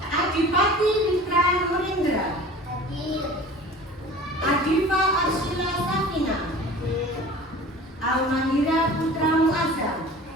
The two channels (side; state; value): both; normal; correlation 0.42